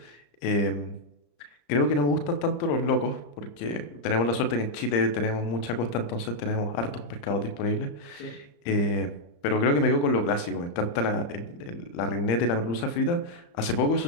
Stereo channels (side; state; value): right; late; 34 ms